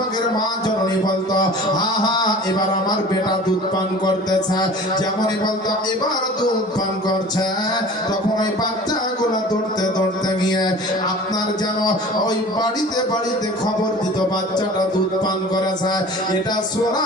মা জননী বলতো, হা হা এবার আমার বেটা দুধ পান করতেছে। যেমনই বলতো এবার দুধ পান করছে, তখন ওই বাচ্চাগুলো দৌড়তে দৌড়তে গিয়ে আপনার যেন ওই বাড়িতে বাড়িতে খবর দিত বাচ্চাটা দুধ পান করেছে। এটা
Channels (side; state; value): both; normal; correlation 0.42